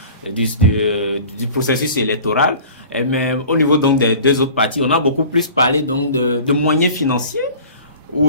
du processus électoral. Mais au niveau donc des deux autres partis, on a beaucoup plus parlé donc de moyens financiers,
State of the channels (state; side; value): inverted; both; correlation -0.43